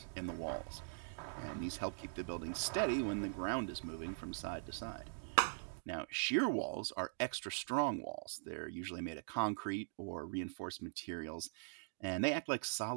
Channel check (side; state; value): left; silent; digital silence